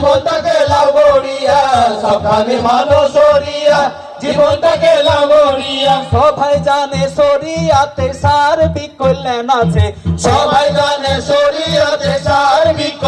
লাও গড়িয়া, সাবধানে মানো সরিয়া জীবনটাকে লাও গড়িয়া। সবাই জানে সরিয়াতে সার্বিক কল্যাণ আছে, সবাই জানে সরিয়াতে সার্বিক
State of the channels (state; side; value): identical; both; correlation 1.00